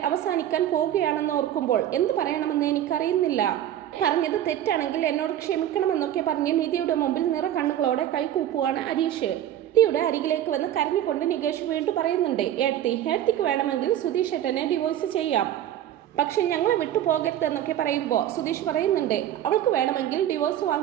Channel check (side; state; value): left; quieter; 11.7 dB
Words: അവസാനിക്കാൻ പോവുകയാണെന്ന് ഓർക്കുമ്പോൾ എന്ത് പറയണമെന്ന് എനിക്കറിയുന്നില്ല. പറഞ്ഞത് തെറ്റാണെങ്കിൽ എന്നോട് ക്ഷമിക്കണമെന്നൊക്കെ പറഞ്ഞ് നിധിയുടെ മുമ്പിൽ നിറ കണ്ണുകളോടെ കൈകൂപ്പുവാണ് ഹരീഷ്. നിധിയുടെ അരികിലേക്ക് വന്ന് കരഞ്ഞുകൊണ്ട് നികേഷ് വീണ്ടും പറയുന്നുണ്ട്, ഏടത്തിക്ക് വേണമെങ്കിൽ സുധീഷ് ഏട്ടനെ ഡിവോഴ്സ് ചെയ്യാം, പക്ഷെ ഞങ്ങളെ വിട്ടു പോകരുതെന്നൊക്കെ പറയുമ്പോൾ സുധീഷ് പറയുന്നുണ്ട്, അവൾക്ക് വേണമെങ്കിൽ ഡിവോഴ്സ്